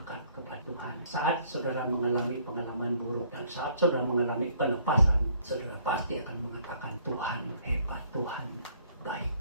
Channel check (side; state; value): both; inverted; correlation -0.61